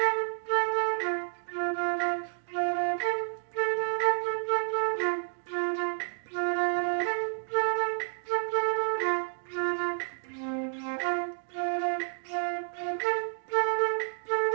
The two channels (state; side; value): silent; left; 58 dB below the other